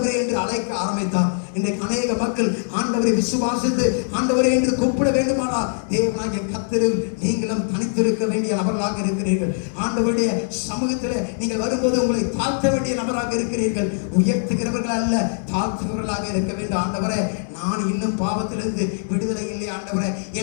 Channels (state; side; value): silent; right; 64 dB below the other